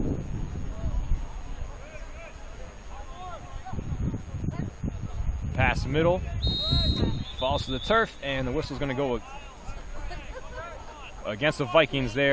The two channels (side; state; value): both; identical; correlation 1.00